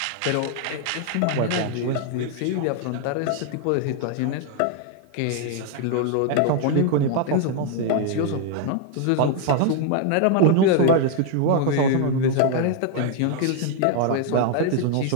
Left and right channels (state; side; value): different; both; correlation 0.00